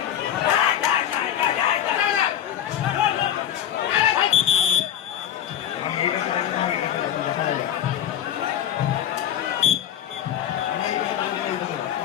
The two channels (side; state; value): right; quieter; 10.5 dB